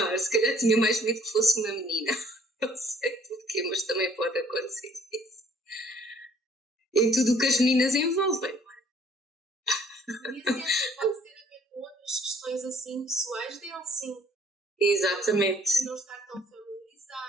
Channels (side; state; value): both; normal; correlation 0.60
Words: se calhar tinha mais medo que fosse uma menina. Não sei porquê, mas também pode acontecer isso. Em tudo o que as meninas envolvem. E assim, pode ter a ver com outras questões assim pessoais dele, sim. Exatamente. De não estar tão